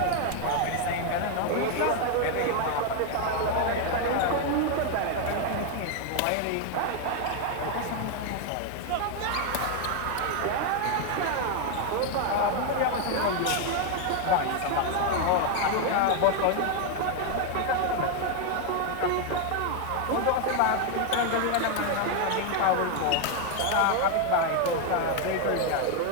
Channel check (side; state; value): both; different; correlation 0.01